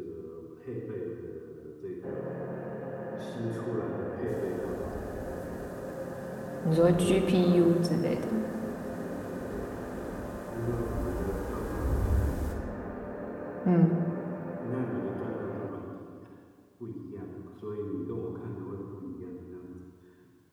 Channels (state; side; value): identical; both; correlation 1.00